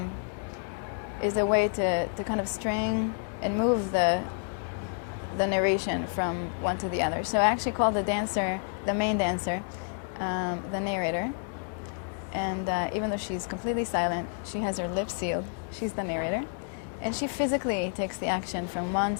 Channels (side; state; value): right; silent; 56 dB below the other